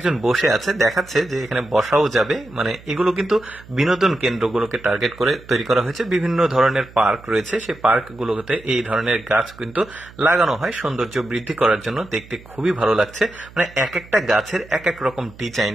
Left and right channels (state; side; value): noise; right; hum, 21 dB below the sound